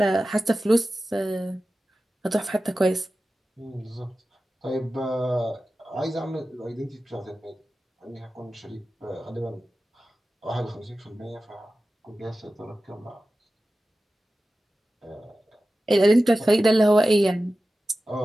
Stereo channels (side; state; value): both; normal; correlation 0.94